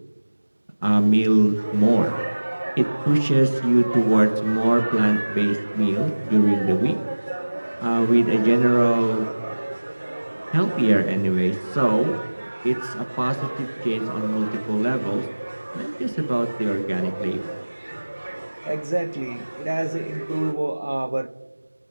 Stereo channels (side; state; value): both; inverted; correlation -1.00